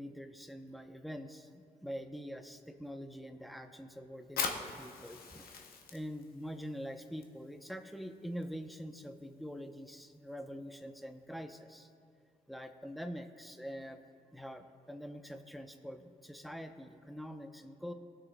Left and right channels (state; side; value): normal; both; correlation 0.67